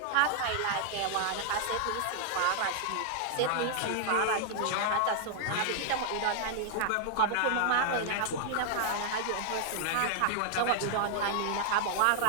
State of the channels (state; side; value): different; both; correlation 0.00